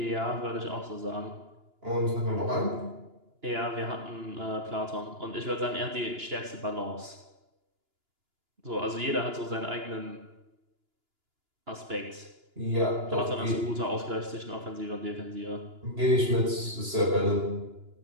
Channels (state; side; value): late; left; 2.9 ms